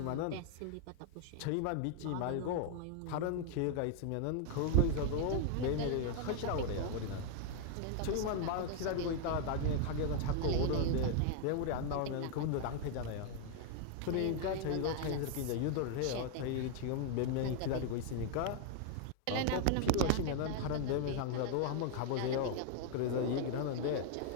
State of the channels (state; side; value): different; both; correlation 0.00